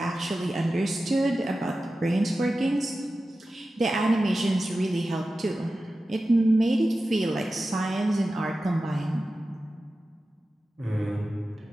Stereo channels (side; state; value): both; normal; correlation 0.94